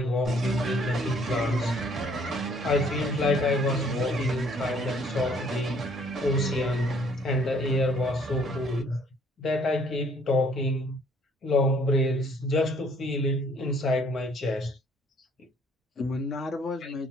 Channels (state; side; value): normal; both; correlation 0.61